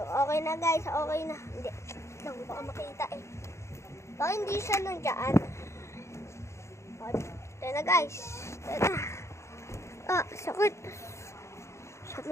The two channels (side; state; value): right; late; 0.14 ms